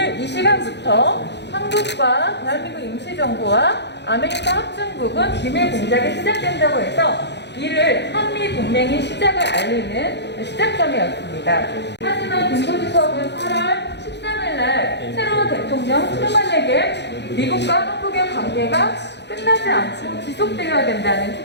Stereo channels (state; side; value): late; right; 0.50 ms